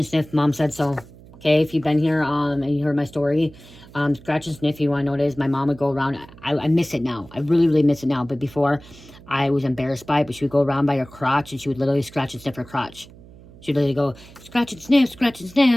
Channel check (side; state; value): right; noise; hum, 21 dB below the sound